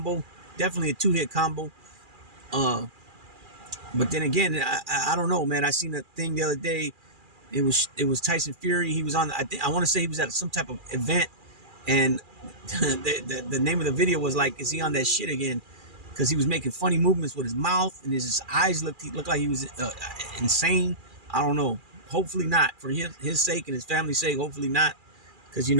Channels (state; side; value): late; left; 2.4 ms